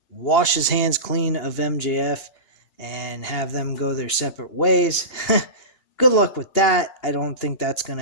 wash his hands clean of MJF and have them go their separate ways. Good luck with that. I don't think that's going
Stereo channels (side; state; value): right; late; 2.9 ms